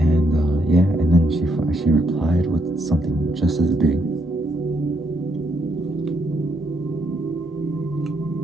and then she replied with something just as big.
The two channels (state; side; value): normal; both; correlation 0.75